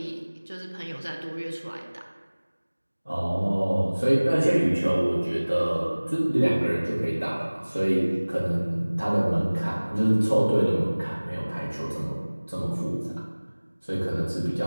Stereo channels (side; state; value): both; inverted; correlation -1.00